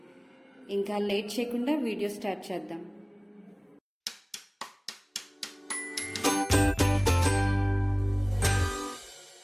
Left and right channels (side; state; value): both; identical; correlation 1.00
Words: ఇంకా లేట్ చేయకుండా వీడియో స్టార్ట్ చేద్దాం.